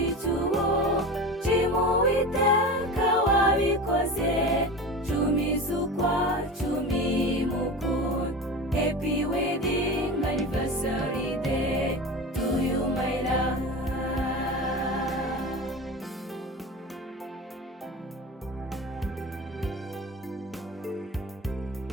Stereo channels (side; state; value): both; normal; correlation 0.29